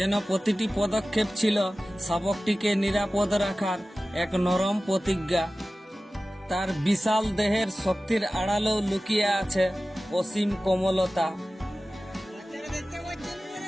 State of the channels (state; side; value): normal; both; correlation 0.96